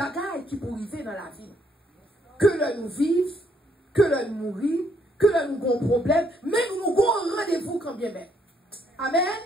qui pour arriver dans la vie. Que l'heure nous vive, que l'heure nous mourir, que l'heure nous avons problème, mais nous avons rendez-vous quand bien même. Amen.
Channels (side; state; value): both; normal; correlation 0.71